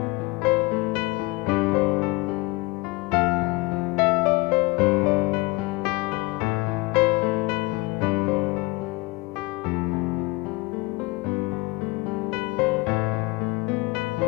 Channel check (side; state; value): right; quieter; 23.1 dB